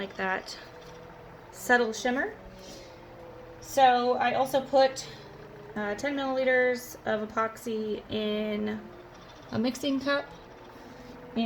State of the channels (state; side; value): identical; both; correlation 1.00